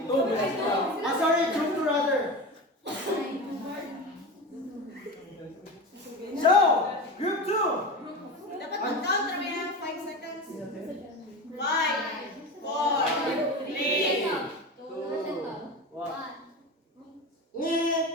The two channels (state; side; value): normal; both; correlation 0.26